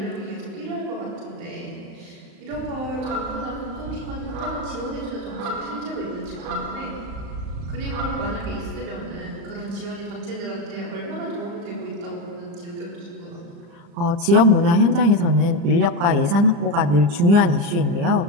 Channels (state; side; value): late; left; 35 ms